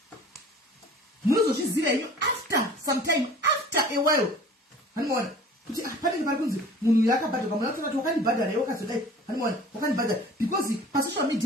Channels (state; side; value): normal; both; correlation 0.45